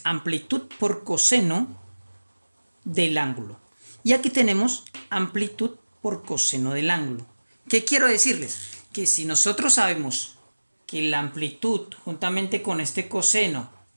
amplitud por coseno del ángulo. Y aquí tenemos amplitud por coseno del ángulo. ¿Qué quiero decirles? Que si nosotros sabemos que la amplitud juntamente con este coseno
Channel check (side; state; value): both; inverted; correlation -1.00